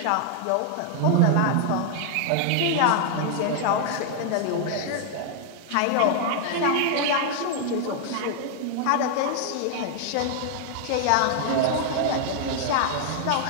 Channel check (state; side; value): different; both; correlation 0.00